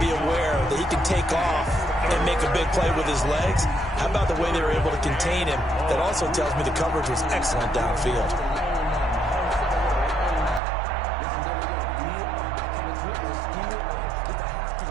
aware that he can take off and make a big play with his legs. How about the way they were able to contain him? That also tells me the coverage was excellent downfield.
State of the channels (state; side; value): drops out; left; at 10.6 s